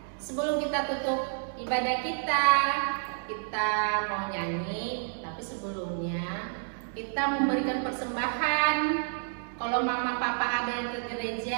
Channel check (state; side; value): silent; left; 58 dB below the other